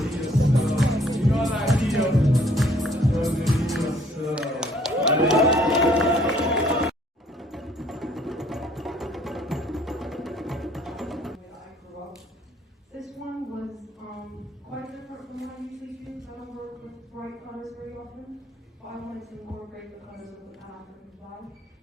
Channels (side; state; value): both; normal; correlation 0.61